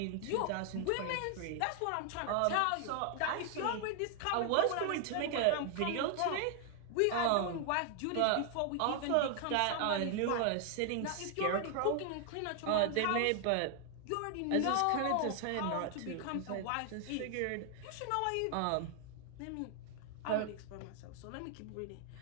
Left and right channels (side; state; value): both; different; correlation 0.00